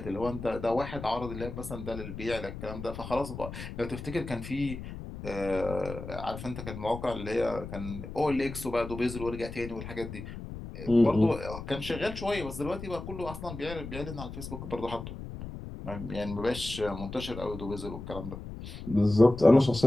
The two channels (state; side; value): noise; left; rumble, 10 dB below the sound